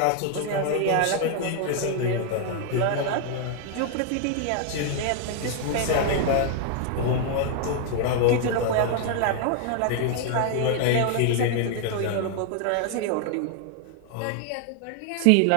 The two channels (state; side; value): different; both; correlation 0.00